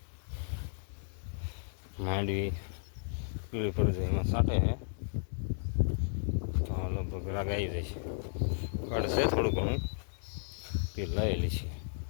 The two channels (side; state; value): right; silent; digital silence